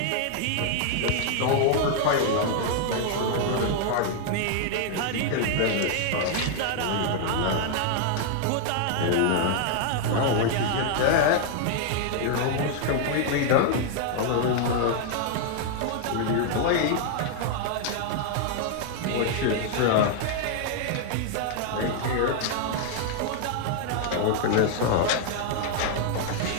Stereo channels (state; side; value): different; both; correlation 0.00